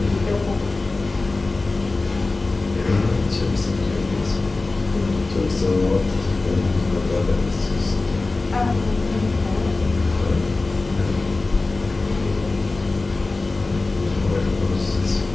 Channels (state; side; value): quieter; right; 3.4 dB